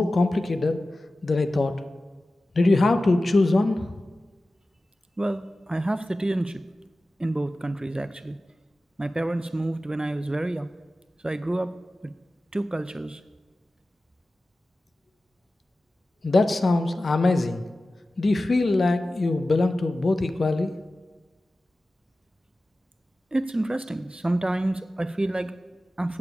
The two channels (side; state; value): both; normal; correlation 0.95